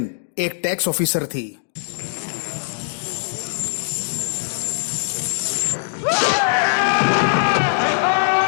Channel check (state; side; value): silent; right; digital silence